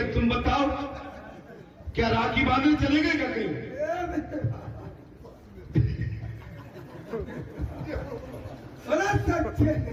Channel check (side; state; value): both; identical; correlation 1.00